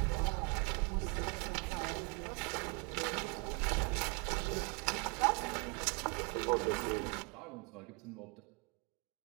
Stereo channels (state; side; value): quieter; left; 33.2 dB